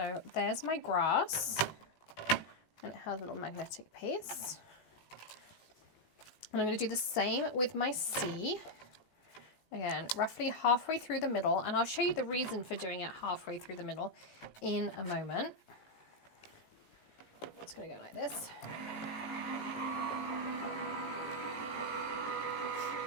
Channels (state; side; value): late; right; 19 ms